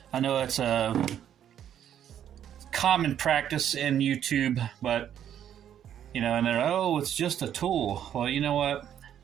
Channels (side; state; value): left; quieter; 9.9 dB